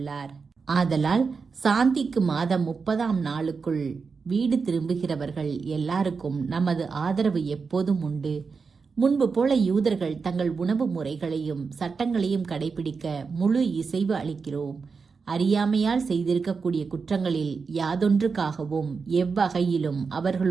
ஆதலால் சாந்திக்கு மாதம் 30ஆம் நாளுக்குள் வீடு திரும்புகிறவர்கள் எல்லாருக்கும் நமது ஆதரவு எப்போதும் உண்டு. முன்பு போல யூதர்கள் தங்கள் உணவு முறைகளையும் சட்டங்களையும் கடைபிடிக்க முழு இசைவு அளிக்கிறோம். அறியாமையால் செய்திருக்கக்கூடிய குற்றங்களில் யாதொன்றுக்காகவும் எவ்வகையிலும்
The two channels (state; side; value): quieter; left; 5.1 dB